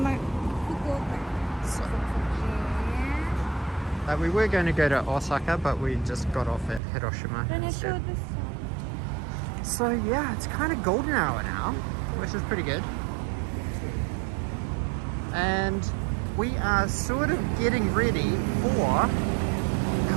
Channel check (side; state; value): left; drops out; at 6.8 s